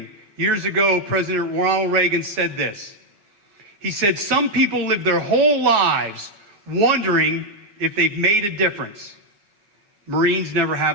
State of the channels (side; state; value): left; late; 9.6 ms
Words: Years ago, President Ronald Reagan said this. He said, some people live their whole lives wondering if they've made a difference. Marines never